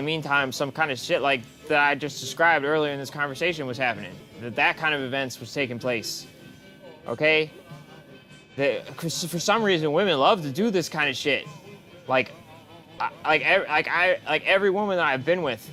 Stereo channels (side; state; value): both; identical; correlation 1.00